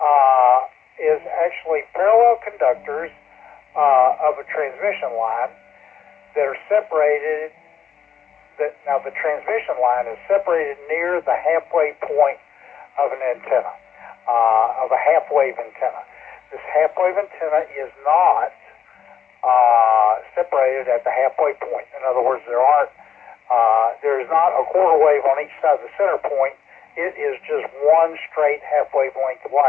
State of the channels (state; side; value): quieter; right; 8.1 dB